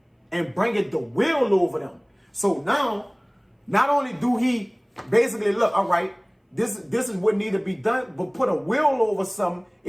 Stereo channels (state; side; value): identical; both; correlation 1.00